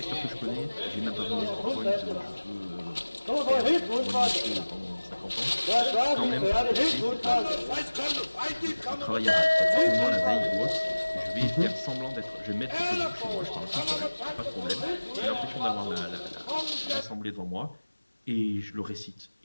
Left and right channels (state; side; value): inverted; both; correlation -1.00